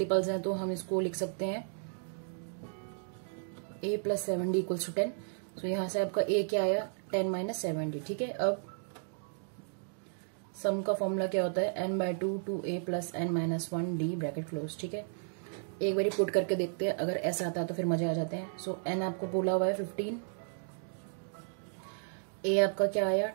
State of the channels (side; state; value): left; silent; digital silence